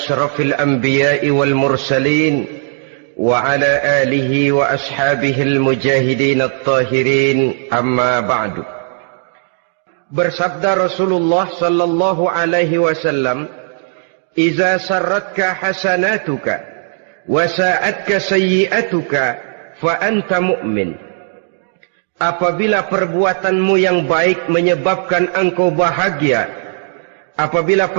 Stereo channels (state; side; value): silent; left; digital silence